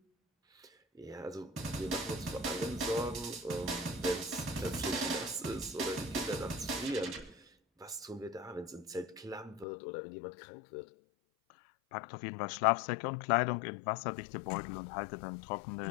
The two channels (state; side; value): drops out; right; at 9.7 s